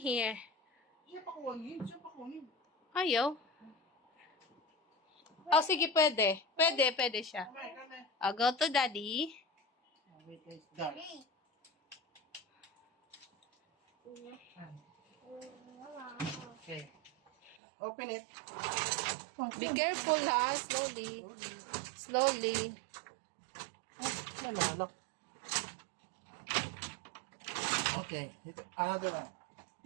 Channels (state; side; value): drops out; left; at 17.6 s